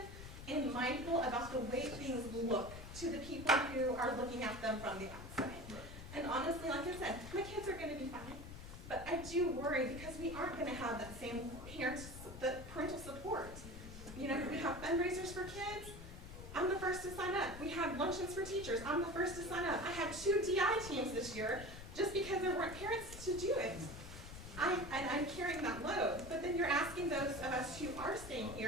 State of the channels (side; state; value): left; noise; rumble, 12 dB below the sound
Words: and mindful about the way things look to the people who are looking at them from the outside. Right. And honestly, like I said, my kids are going to be fine. But I do worry because we aren't going to have that same parental support. You know, we have fundraisers for kids. I'm the first to sign up. We have luncheons for teachers. I'm the first to sign up. I had 2 DI teams this year just because there weren't parents to do it. I'm carrying that load. But then you're asking those of us who are staying